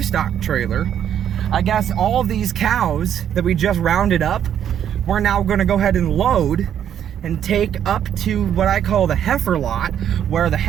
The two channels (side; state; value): left; quieter; 9.6 dB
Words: trailer. I guess all of these cows that we just rounded up, we're now going to go ahead and load and take up to what I call the heifer lot, where the